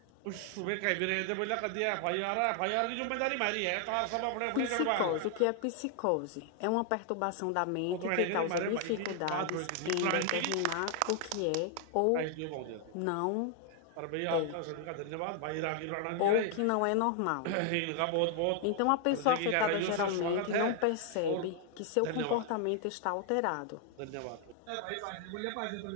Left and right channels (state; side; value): different; both; correlation 0.00